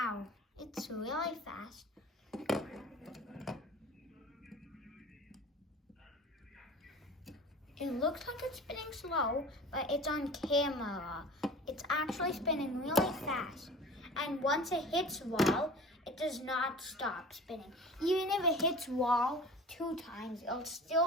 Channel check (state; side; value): normal; both; correlation 0.40